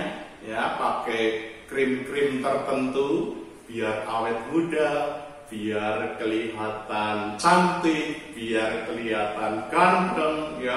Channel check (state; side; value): identical; both; correlation 1.00